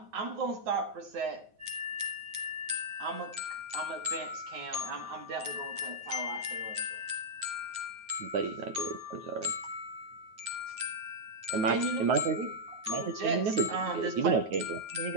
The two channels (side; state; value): left; late; 9.3 ms